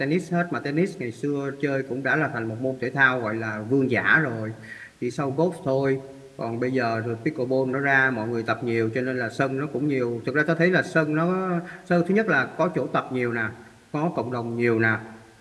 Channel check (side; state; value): both; identical; correlation 1.00